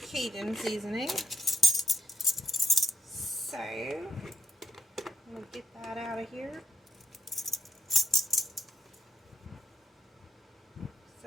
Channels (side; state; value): both; normal; correlation 0.78